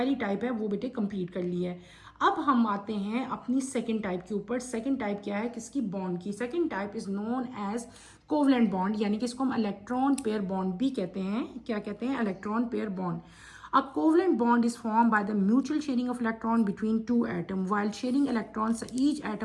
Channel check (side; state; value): both; identical; correlation 1.00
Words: टाइप है वो बेटे कंप्लीट कर ली है। अब हम आते हैं अपनी सेकंड टाइप के ऊपर। सेकंड टाइप क्या है, किसकी, बॉन्ड की। Second type is known as covalent bond, यानी कि इसको हम इलेक्ट्रॉन पेयर बॉन्ड भी कहते हैं। क्या कहते हैं, electron pair bond. A covalent bond is formed by the mutual sharing of electron between two atoms. While sharing electrons, each